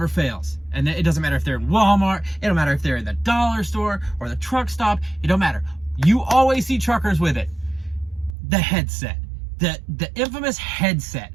fails. And it doesn't matter if they're in Walmart, it don't matter if they're in the dollar store or the truck stop, it don't matter. You always see truckers with it. The headset. The infamous headset.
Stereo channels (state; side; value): drops out; left; at 8.3 s